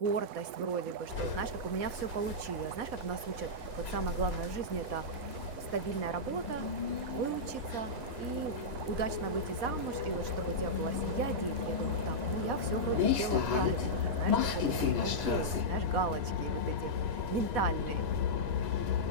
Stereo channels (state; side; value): late; left; 4.2 ms